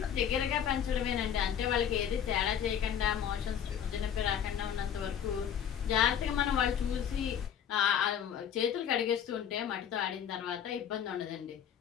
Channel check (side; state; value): right; quieter; 8.8 dB